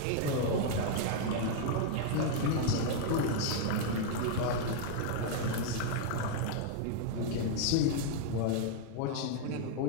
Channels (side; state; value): both; different; correlation 0.00